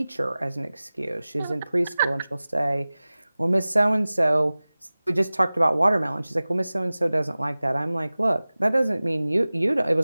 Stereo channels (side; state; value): both; inverted; correlation -0.98